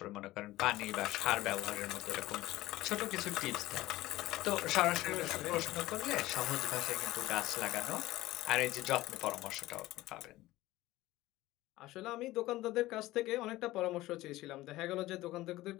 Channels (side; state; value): right; quieter; 17.3 dB